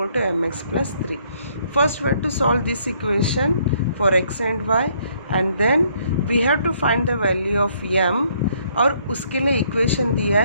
to mx plus 3. First we have to solve this equation for x and y and then we have to find the value of m और उसके लिए equation दिया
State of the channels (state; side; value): inverted; both; correlation -0.67